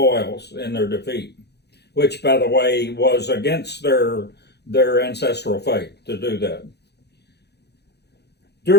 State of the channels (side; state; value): right; late; 0.48 ms